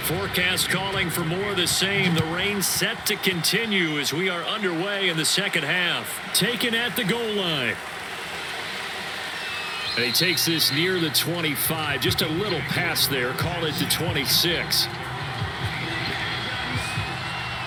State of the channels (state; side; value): identical; both; correlation 1.00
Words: Forecast calling for more of the same. The rain set to continue as we are underway in the second half. Taken at the goal line. And he takes this near the 25. Just a little pass there. Call it the 26.